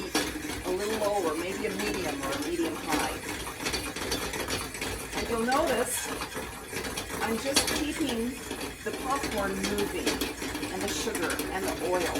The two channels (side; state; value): both; identical; correlation 1.00